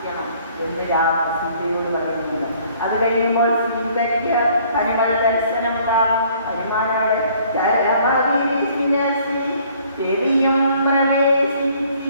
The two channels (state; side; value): inverted; both; correlation -0.59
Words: എന്ന് സീതയോട് പറയുന്നില്ല. അത് കഴിയുമ്പോൾ സീതയ്ക്ക് ഹനുമാൻ ദർശനം കാണും. ഹനുമാനോട് ചെവിയും